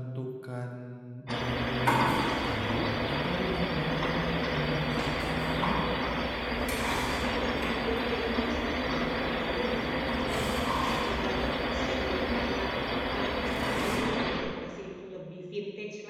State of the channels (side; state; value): both; identical; correlation 1.00